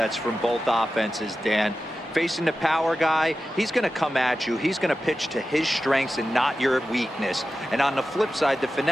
from both offenses, Dan. Facing the power guy, he's going to come at you. He's going to pitch to his strengths and not your weakness. And on the flip side, the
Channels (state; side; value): normal; both; correlation 0.93